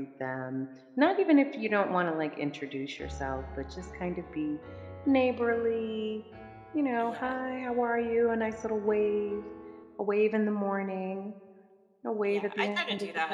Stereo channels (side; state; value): both; identical; correlation 1.00